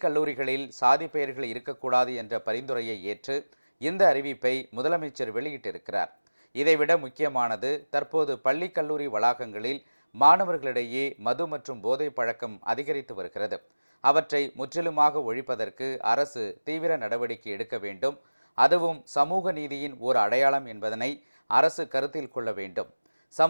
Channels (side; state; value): both; inverted; correlation -1.00